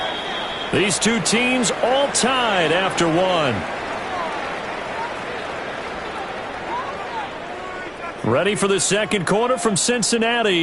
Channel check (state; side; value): identical; both; correlation 1.00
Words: These 2 teams all tied after 1. Ready for the 2nd quarter from